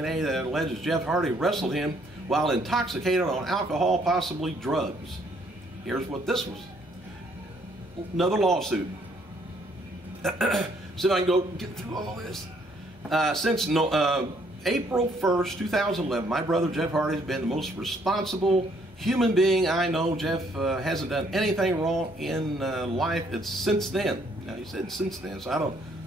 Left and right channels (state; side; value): normal; both; correlation 0.67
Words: that alleges Jeff Hardy wrestled him while intoxicated on alcohol, possibly drugs. Here's what this was. Another lawsuit. See if I can go get through all this. Since April 1st, 2011, my brother Jeff Hardy has been the most responsible human being I know. Jeff hasn't done anything wrong in life. It's since then. Now, he said since then, so I don't,